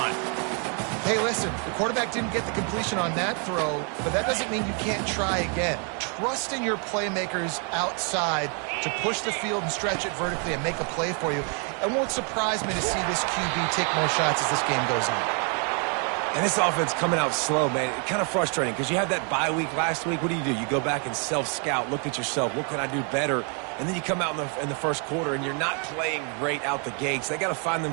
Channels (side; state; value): left; quieter; 39.1 dB